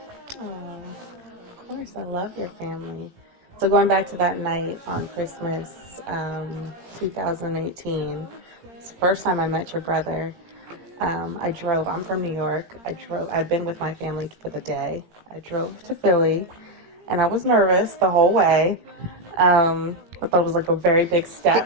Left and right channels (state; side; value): late; left; 17 ms